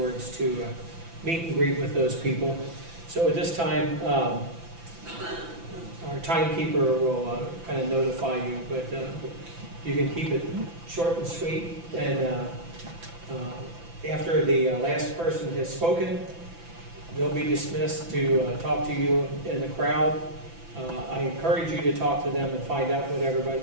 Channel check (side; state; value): left; late; 5.9 ms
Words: to meet and greet with those people. So at this time, our timekeeper will kind of notify you, but you can keep it short and sweet. And after the last person has spoken, they'll be dismissed to talk to you in the crowd. I encourage you to talk to them and find out what